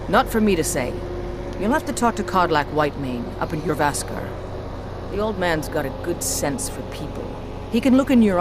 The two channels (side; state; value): both; identical; correlation 1.00